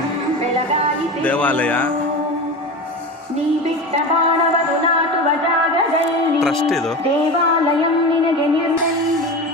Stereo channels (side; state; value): both; normal; correlation 0.27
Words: ದೇವಾಲಯ ಟ್ರಸ್ಟ್. ಇದು